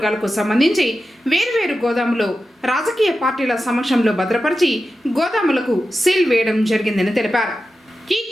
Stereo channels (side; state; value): both; normal; correlation 0.92